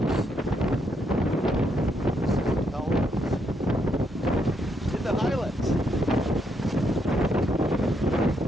This is intelligence. In the Highlands.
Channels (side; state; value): both; normal; correlation 0.76